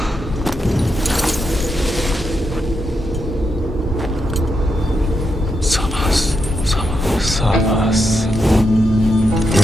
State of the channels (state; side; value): normal; both; correlation 0.83